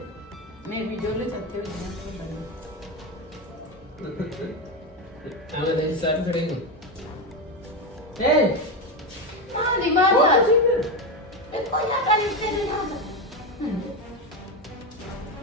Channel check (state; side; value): normal; both; correlation 0.14